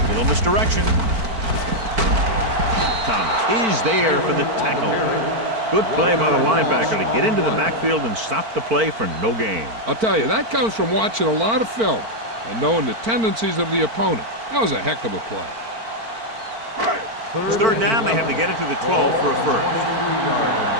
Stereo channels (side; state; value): left; late; 4.5 ms